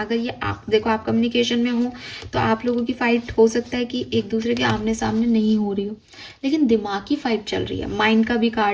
ये आप देखो, आप कम्युनिकेशन में हो तो आप लोगों की फाइट हो सकता है कि एक दूसरे के आमने सामने नहीं हो रही हो, लेकिन दिमागी फाइट चल रही है। माइंड का भी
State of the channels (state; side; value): identical; both; correlation 1.00